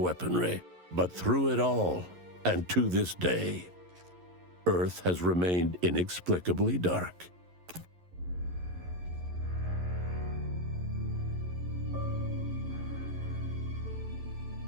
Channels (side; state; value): left; late; 11 ms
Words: weaponry. But through it all, and to this day, Earth has remained inexplicably dark.